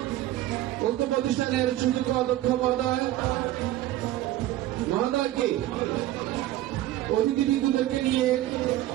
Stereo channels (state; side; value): quieter; left; 14.6 dB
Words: উক্ত প্রতিষ্ঠানের সুযোগ্য অধ্যক্ষ মহোদয়কে অতিথিবৃন্দদেরকে নিয়ে